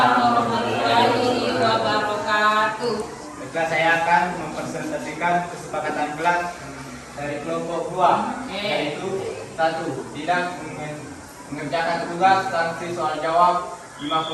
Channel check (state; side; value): identical; both; correlation 1.00